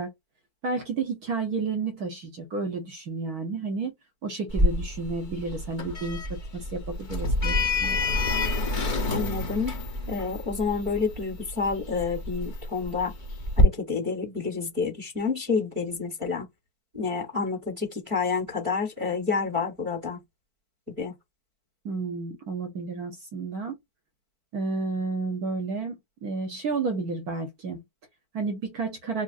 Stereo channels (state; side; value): late; left; 4.5 ms